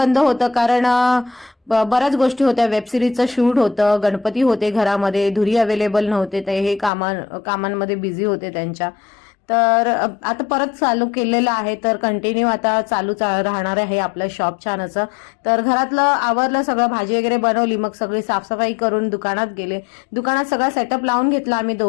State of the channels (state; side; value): drops out; right; at 6.9 s